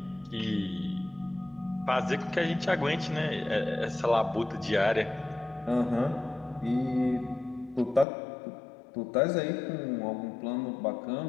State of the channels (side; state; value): right; drops out; at 8.1 s